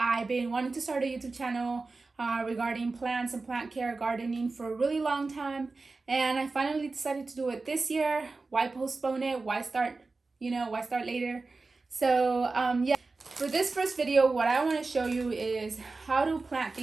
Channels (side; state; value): left; quieter; 3.8 dB